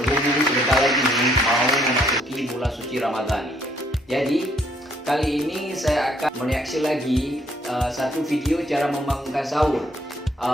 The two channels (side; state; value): both; normal; correlation 0.67